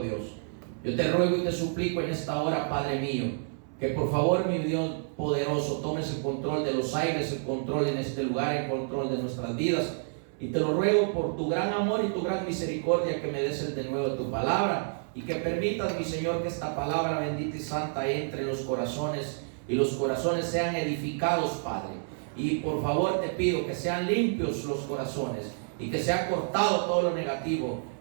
Dios. Yo te ruego y te suplico en esta hora, Padre mío, que por favor, mi Dios poderoso, tomes el control de los aires, el control en este lugar, el control de nuestras vidas. Y te lo ruego por tu gran amor y tu gran misericordia, que me des el denuedo de tu palabra y que permitas, mi Señor, que esta palabra bendita y santa entre en los corazones y los corazones sean edificados, Padre. Y por favor te pido que sean limpios los corazones y que sea cortado todo lo negativo.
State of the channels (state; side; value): silent; left; 58 dB below the other